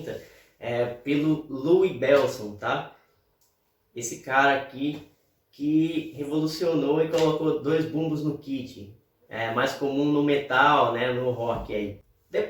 pelo Louis Bellson, tá? Esse cara aqui que revolucionou e colocou 2 bumbos no kit. É mais comum no metal, né, no rock aí.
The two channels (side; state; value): both; identical; correlation 1.00